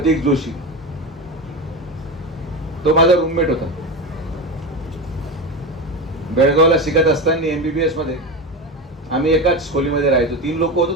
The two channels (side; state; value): both; normal; correlation 0.21